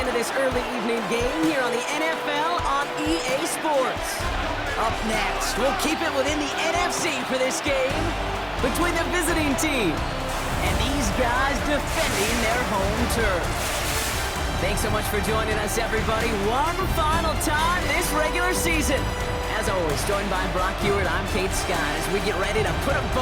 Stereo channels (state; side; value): identical; both; correlation 1.00